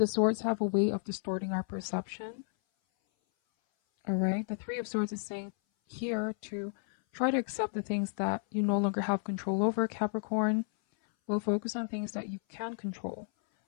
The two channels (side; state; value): right; silent; 56 dB below the other